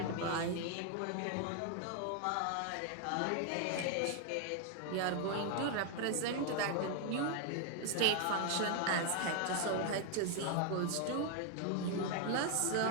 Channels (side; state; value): both; different; correlation 0.00